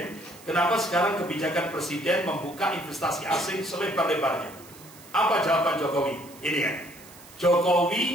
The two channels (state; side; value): noise; right; hiss, 21 dB below the sound